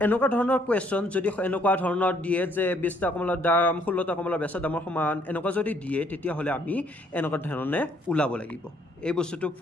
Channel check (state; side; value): normal; both; correlation 0.66